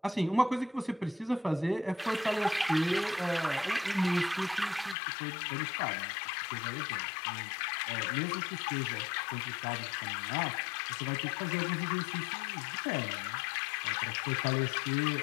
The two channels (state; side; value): drops out; right; at 5.0 s